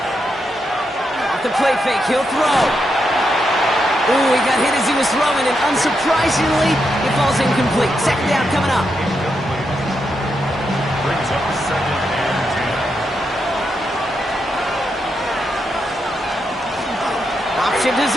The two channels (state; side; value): normal; both; correlation 0.83